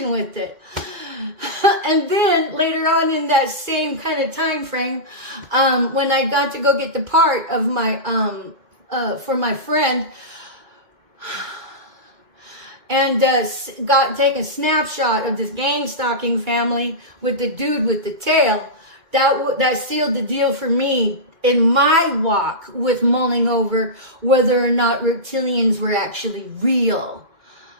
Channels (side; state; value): left; late; 2.1 ms